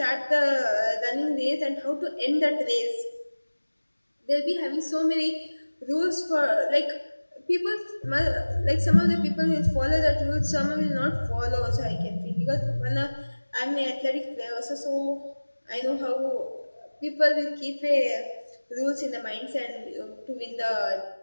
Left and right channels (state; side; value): inverted; both; correlation -1.00